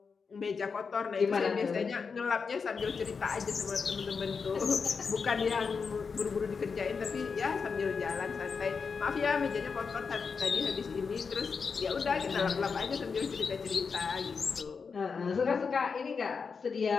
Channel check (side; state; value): right; quieter; 5.4 dB